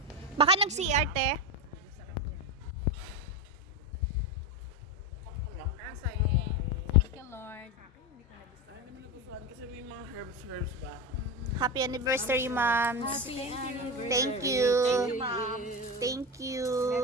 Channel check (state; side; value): normal; both; correlation 0.19